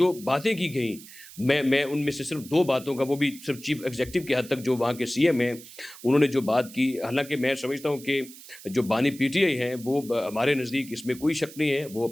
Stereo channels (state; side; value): noise; right; hiss, 18 dB below the sound